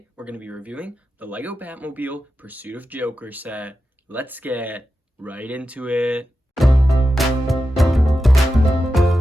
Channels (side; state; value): both; normal; correlation 0.91